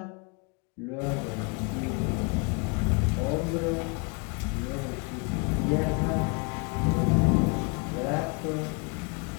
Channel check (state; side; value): quieter; right; 32.1 dB